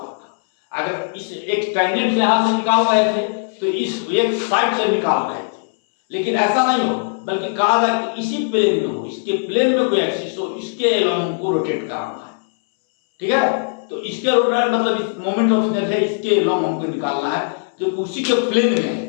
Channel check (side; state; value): right; silent; 64 dB below the other